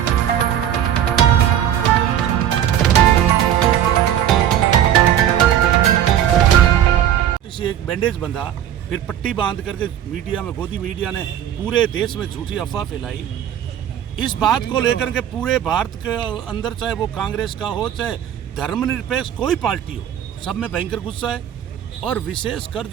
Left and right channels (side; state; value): left; quieter; 10.5 dB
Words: बैंडेज बंधा, फिर पट्टी बांध करके मीडिया में, गोदी मीडिया ने पूरे देश में झूठी अफवाह फैलाई। इस बात को लेकर के पूरे भारत के अंदर, चाहे वो कांग्रेस का हो चाहे धर्मनिरपेक्ष कोई पार्टी हो, सब में भयंकर गुस्सा है। और विशेषकर